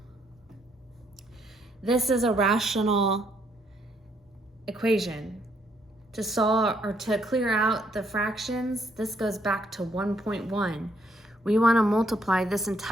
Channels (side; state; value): both; normal; correlation 0.71